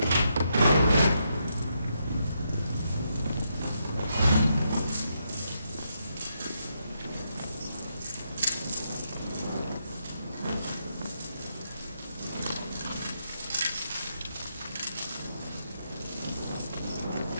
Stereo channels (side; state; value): both; inverted; correlation -0.80